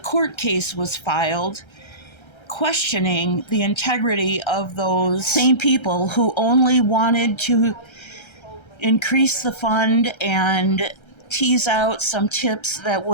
case was filed questioning the integrity of those same people who only wanted to increase the fund and tease out some tips that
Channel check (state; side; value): late; right; 1.3 ms